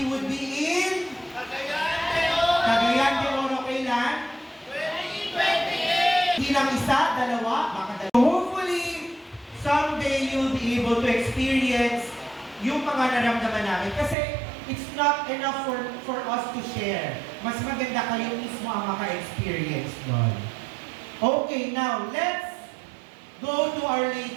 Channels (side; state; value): left; drops out; at 14.2 s